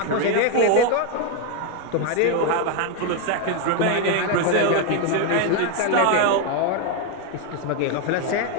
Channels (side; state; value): both; different; correlation 0.01